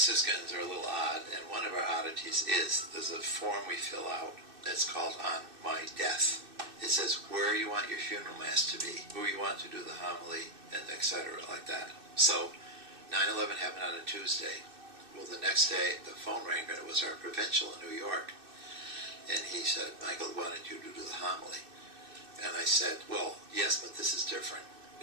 Franciscans are a little odd, and one of our oddities is there's a form we fill out that's called On My Death. It says where you want your funeral mass to be, who you want to do the homily, and etc. like that. So 9/11 happened on a Tuesday. Well, the next day the phone rang, and it was our provincial in New York. And he said, Michael wanted you to do the homily. And I said, well, yes, but this is different.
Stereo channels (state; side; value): late; left; 2.6 ms